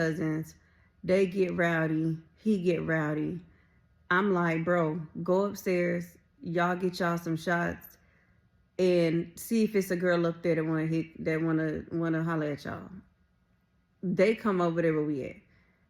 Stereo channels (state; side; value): identical; both; correlation 1.00